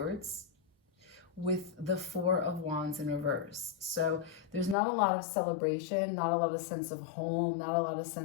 with the Four of Wands in reverse. So there's not a lot of celebration, not a lot of sense of home, not a lot of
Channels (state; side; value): drops out; right; at 4.8 s